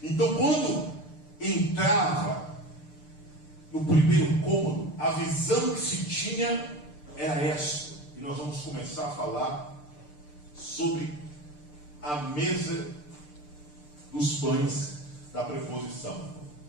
Então, quando entrava no primeiro cômodo, a visão que se tinha era esta. E nós vamos começar a falar sobre a mesa dos pães da preposição.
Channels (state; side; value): late; right; 6.7 ms